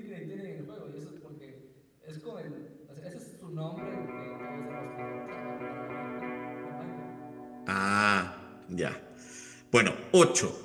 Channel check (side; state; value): both; identical; correlation 1.00